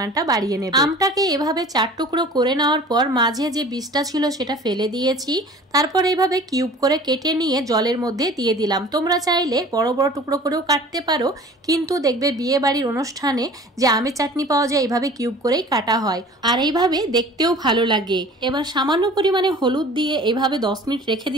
বাড়িয়ে নেবে। আমটাকে এভাবে 4 টুকরো করে নেওয়ার পর মাঝে যে বীজটা ছিল সেটা ফেলে দিয়েছি। তারপর এইভাবে কিউব করে কেটে নিয়ে জলের মধ্যে দিয়ে দিলাম। তোমরা চাইলে বড় বড় টুকরো করেও কাটতে পারো, কিন্তু দেখবে বিয়ে বাড়ির অনুষ্ঠানে যে আমের চাটনি পাওয়া যায় এইভাবে কিউব করেই কাটা হয়, আর এইভাবে দেখতেও ভালো লাগে। এবার সামান্য পরিমাণে হলুদ দিয়ে এইভাবে 10 মিনিট রেখে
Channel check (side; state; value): both; normal; correlation 0.44